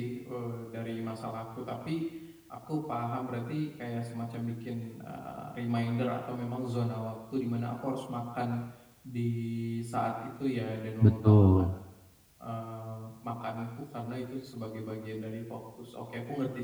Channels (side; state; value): both; identical; correlation 1.00